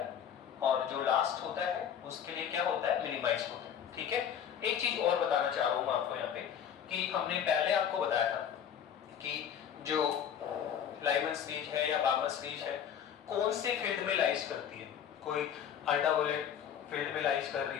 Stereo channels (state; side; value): quieter; right; 8.7 dB